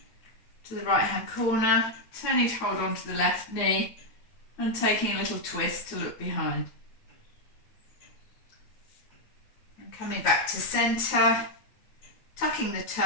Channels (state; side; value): late; right; 8.9 ms